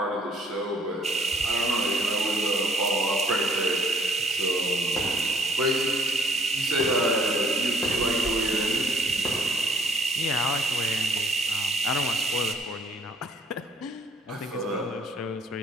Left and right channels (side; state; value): both; normal; correlation 0.60